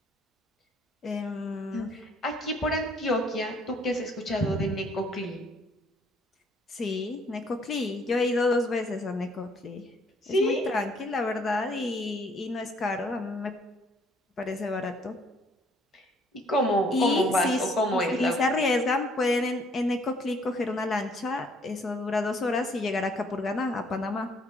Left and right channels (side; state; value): both; normal; correlation 0.63